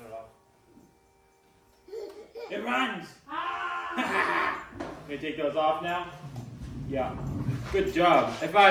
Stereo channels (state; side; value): identical; both; correlation 1.00